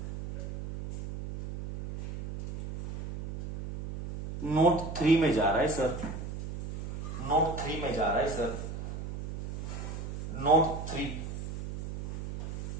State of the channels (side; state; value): right; noise; hum, 6 dB below the sound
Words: नोट 3 में जा रहा है सर, नोट 3 में जा रहा है sir, note 3।